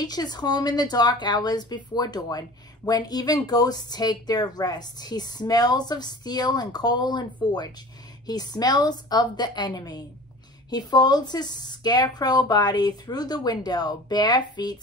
home in the dark hours before dawn, when even ghosts take their rest. He smells of steel and coal and forge. He smells of the enemy. He folds his scarecrow body through the window, bare feet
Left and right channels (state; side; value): normal; both; correlation 0.40